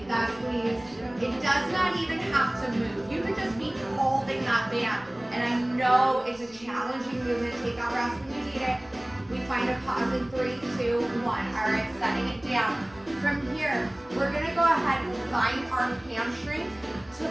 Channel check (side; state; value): left; noise; rumble, 26 dB below the sound